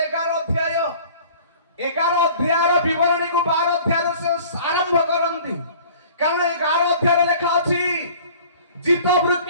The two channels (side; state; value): both; inverted; correlation -0.48